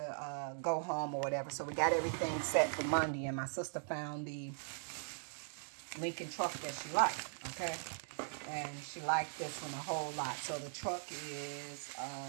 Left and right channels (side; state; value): left; silent; digital silence